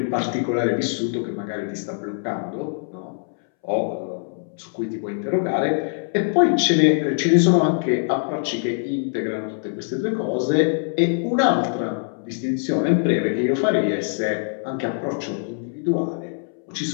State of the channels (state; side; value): silent; right; 63 dB below the other